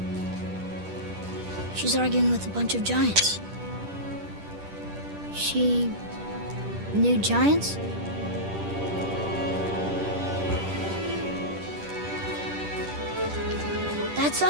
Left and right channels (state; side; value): late; left; 10 ms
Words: She's arguing with a bunch of giants. She knew giants? That's